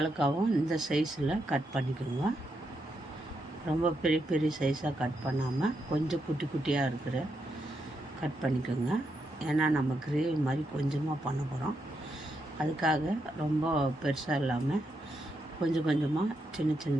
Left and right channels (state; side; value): normal; both; correlation 0.82